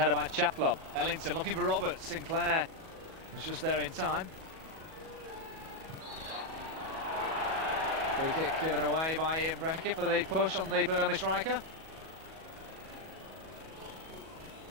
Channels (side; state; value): left; late; 37 ms